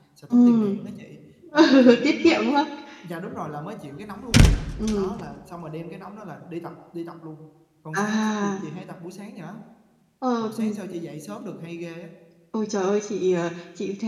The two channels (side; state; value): both; identical; correlation 1.00